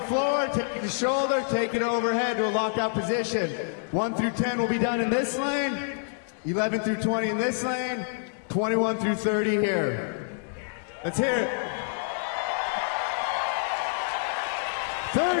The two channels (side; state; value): right; silent; digital silence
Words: floor, take it to shoulder, take it overhead to a lockout position. 1 through 10 will be done in this lane, 11 through 20 in this lane, 21 through 30 here. Let's hear it.